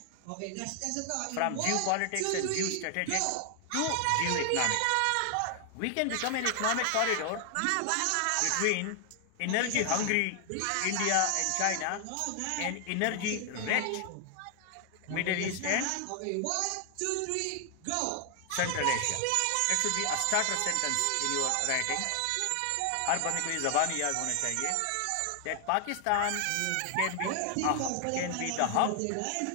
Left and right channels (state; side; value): different; both; correlation 0.00